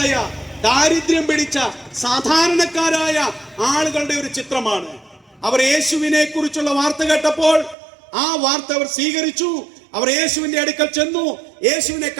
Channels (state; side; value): drops out; left; at 7.8 s